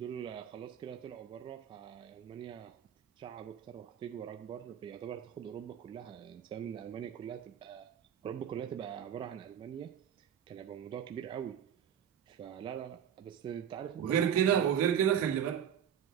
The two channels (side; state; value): left; quieter; 9.0 dB